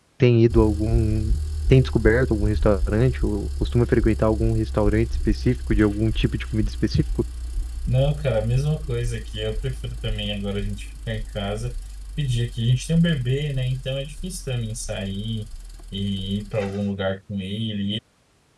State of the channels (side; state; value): both; identical; correlation 1.00